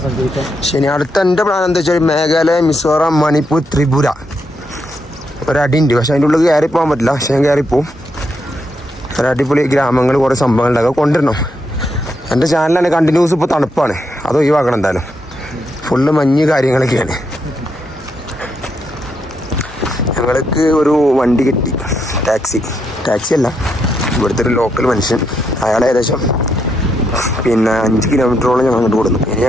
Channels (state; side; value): normal; both; correlation 0.80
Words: സഞ്ചരിക്കാം. ശരി, അടുത്ത എൻ്റെ പ്ലാൻ എന്താ വെച്ചാൽ മേഘാലയ, മിസോറാം, മണിപ്പൂർ, ത്രിപുര ഒരടിയുണ്ട്. പക്ഷെ അതിൻ്റെ ഉള്ളിൽ കയറി പോകാൻ പറ്റില്ല. പക്ഷെ ഞാൻ കയറിപ്പോവും. ഒരടിപൊളി ഗ്രാമങ്ങൾ, കുറേ സംഭവങ്ങളുണ്ടാകുക കൊണ്ടുവരണം. എൻ്റെ ചാനലാണ് കണ്ടിന്യൂസ്. ഇപ്പോൾ തണുപ്പാണ്, അത് ഒഴിവാക്കണം എന്തായാലും. ഫുള്ള് മഞ്ഞ് കാര്യങ്ങളൊക്കെയാണ്. ഞങ്ങൾക്ക് ഒരു വണ്ടി കിട്ടി, ടാക്സി അല്ല, ഇവിടുത്തെ ഒരു ലോക്കൽ മനുഷ്യൻ. അയാൾ ഏകദേശം 5 കിലോമീറ്ററോളം ഞങ്ങൾ അങ്ങോട്ട് കൊടുക്കുന്നു. ഇനി